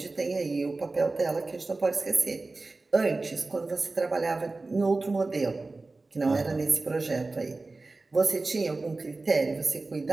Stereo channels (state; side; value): quieter; left; 3.4 dB